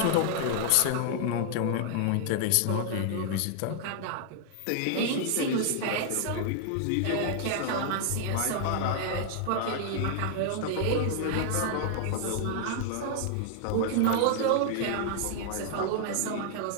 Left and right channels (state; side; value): different; both; correlation 0.00